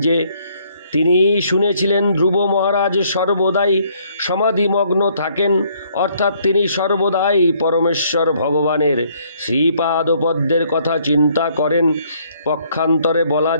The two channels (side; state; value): both; inverted; correlation -0.66